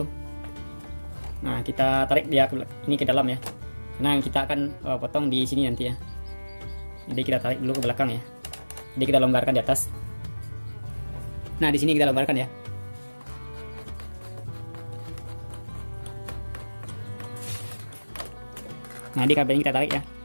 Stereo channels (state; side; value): inverted; both; correlation -1.00